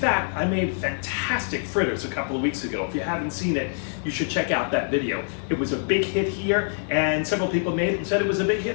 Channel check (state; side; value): silent; right; digital silence